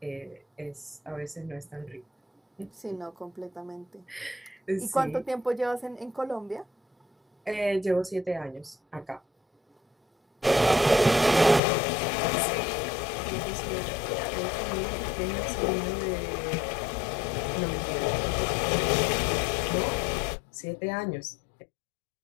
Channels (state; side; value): drops out; right; at 11.6 s